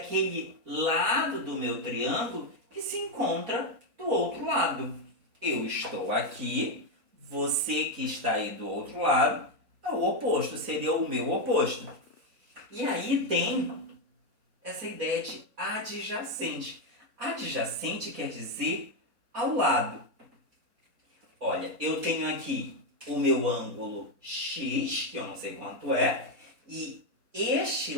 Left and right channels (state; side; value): late; left; 4.0 ms